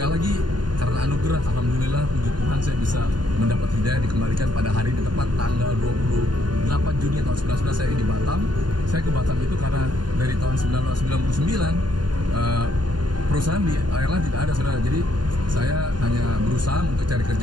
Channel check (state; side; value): late; left; 0.71 ms